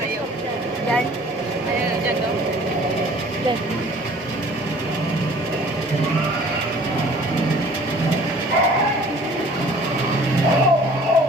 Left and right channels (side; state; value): both; normal; correlation 0.51